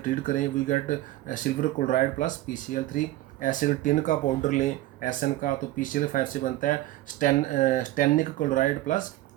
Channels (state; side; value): quieter; left; 15.9 dB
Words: करें we get silver chloride plus PCl3। ऐसे टिन का पाउडर लें SN का तो PCl5 से बनता है स्टेनिक क्लोराइड प्लस